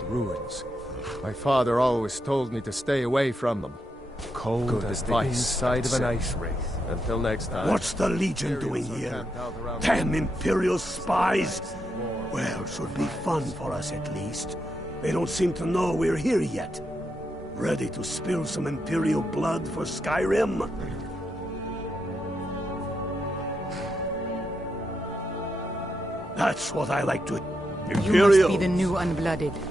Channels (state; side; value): normal; both; correlation 0.83